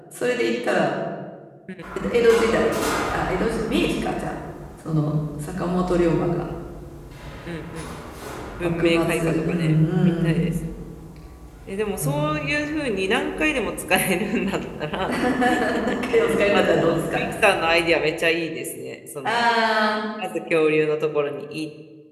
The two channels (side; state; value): both; identical; correlation 1.00